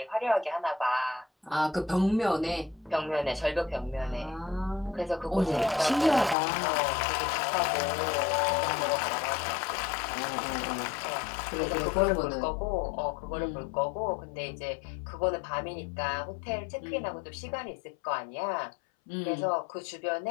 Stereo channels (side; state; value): right; drops out; at 6.4 s